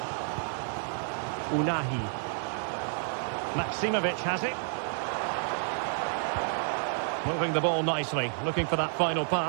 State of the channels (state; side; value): silent; left; 56 dB below the other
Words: Unahi. Maksimovic has it. Moving the ball nicely, looking for that final